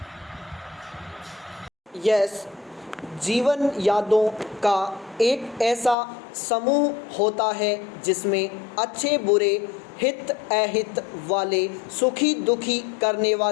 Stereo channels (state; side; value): drops out; right; at 6.0 s